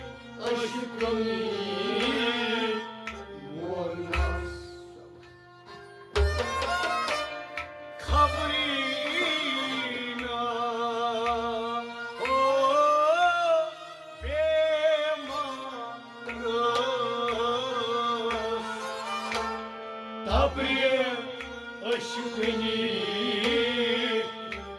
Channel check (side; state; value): both; identical; correlation 1.00